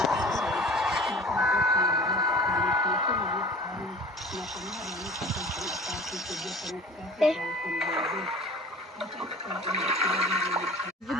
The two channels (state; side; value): normal; both; correlation 0.42